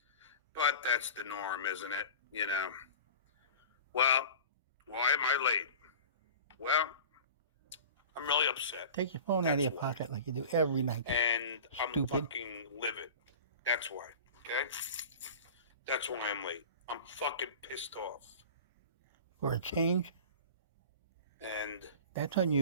But that's the norm, isn't it? You know. Well, why am I late? Well, I'm really upset. Take your phone out of your pocket like you do every night. And I'm Stupid. fucking livid. That's why. Okay? That's why I'm late. I'm fucking pissed off. For a change? And that's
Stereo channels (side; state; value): both; inverted; correlation -0.37